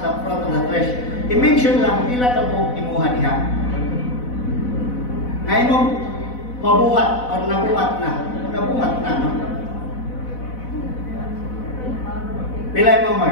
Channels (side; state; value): right; late; 4.0 ms